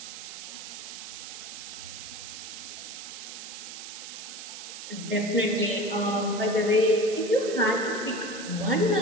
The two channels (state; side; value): noise; right; hiss, 10 dB below the sound